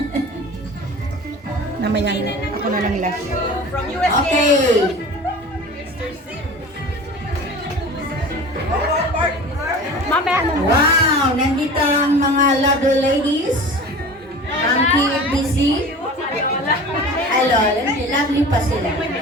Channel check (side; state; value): both; normal; correlation 0.38